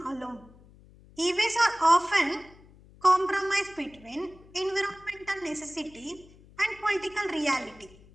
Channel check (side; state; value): left; noise; hum, 24 dB below the sound